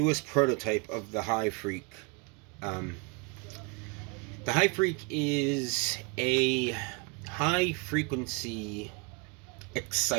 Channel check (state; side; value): quieter; left; 30.9 dB